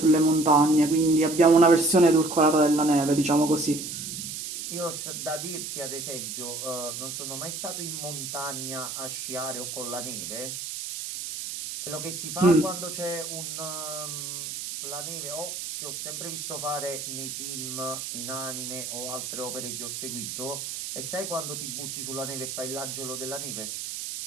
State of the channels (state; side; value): noise; right; hiss, 6 dB below the sound